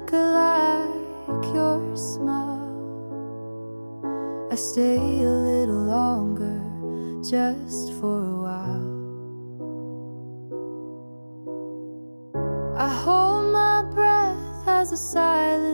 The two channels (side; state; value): both; inverted; correlation -1.00